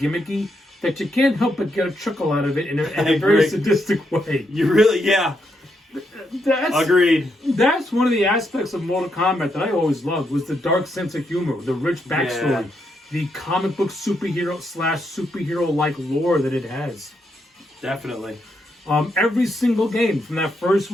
that you can't help but get a chuckle out of it in a very sadistic way. You really, yeah. Agreed. That's one of the aspects of Mortal Kombat that I always loved, was the dark sense of humor, the rich backstory, the comic book superhero/superhero-like lore that it has. Definitely. Every single game from that first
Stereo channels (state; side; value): normal; both; correlation 0.80